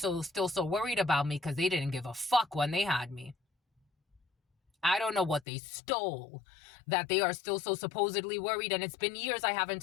so worried about me, because they didn't give a fuck when they had me. I don't know what they stole that they are still so supposedly worried, and it's been years I haven't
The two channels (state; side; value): drops out; right; at 5.5 s